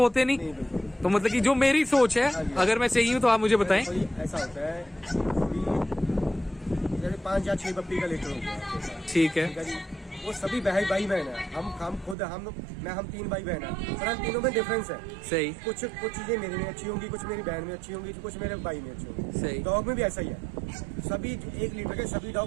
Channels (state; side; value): drops out; left; at 12.2 s